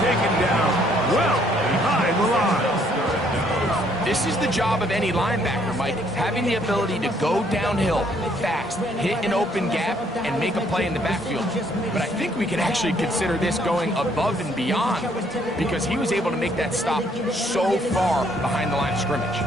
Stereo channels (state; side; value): normal; both; correlation 0.66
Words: taken down well behind the line. This is the job of any linebacker, Mike, having the ability to go downhill fast, hit an open gap, and make a play in the backfield. But I think we can actually consider this going above and beyond, because he was able to make that stop so far behind the line of scrimmage.